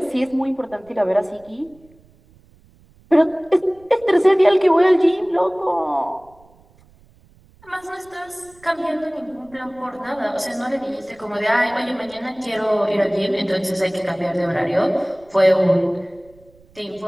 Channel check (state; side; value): noise; right; rumble, 29 dB below the sound